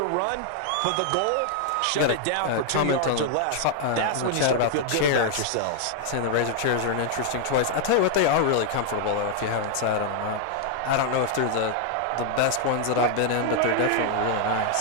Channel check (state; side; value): different; both; correlation 0.00